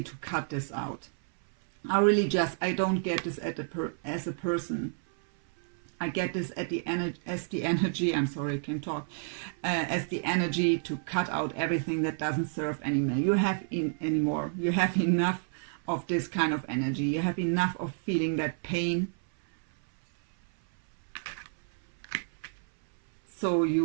to cut this out. I don't get this as a person. I get this as the energy, I'm sorry, I can't talk, as the energy to cut out everything that doesn't serve anymore. You have enough of this kind of energy. You have enough of feeling that pain. So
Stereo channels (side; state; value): left; silent; 58 dB below the other